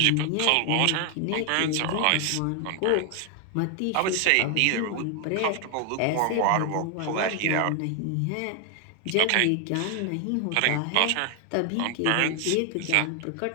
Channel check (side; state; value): both; different; correlation 0.00